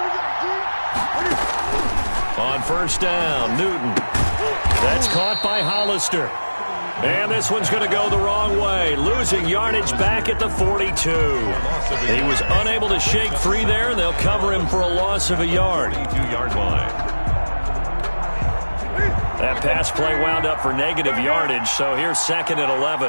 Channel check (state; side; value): inverted; both; correlation -1.00